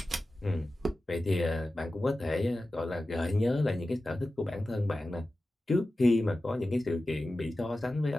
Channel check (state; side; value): normal; both; correlation 0.94